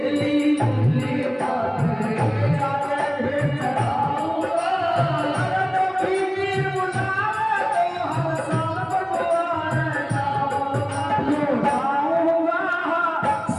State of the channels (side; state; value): both; identical; correlation 1.00